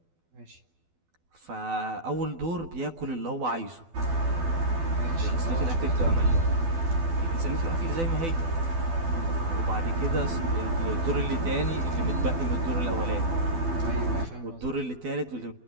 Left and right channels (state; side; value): late; left; 12 ms